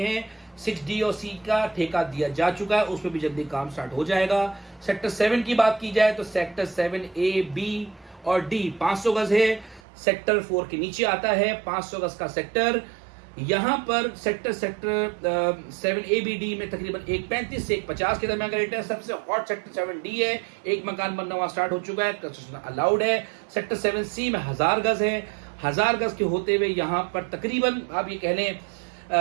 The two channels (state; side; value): drops out; left; at 9.8 s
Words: 6D और C का ठेका दिया जा चुका है, उसमें भी जल्दी काम स्टार्ट हो जाएगा। सेक्टर 7 की बात की जाए तो सेक्टर 7A B और D 500 गज है। सेक्टर 4 के नीचे आता है 500 गज का सेक्टर। यहां पर सेक्टर 7ABD में तकरीबन 135 से 150 के दरमियान का रेट है। सबसे हॉट सेक्टर 7D है, एक मकान बनना वहां स्टार्ट हो चुका है, कंस्ट्रक्शन अलाउड है। सेक्टर 7C में 1000 गज है। 1000 गज के होते हुए यहां पर तकरीबन आप ये कह लें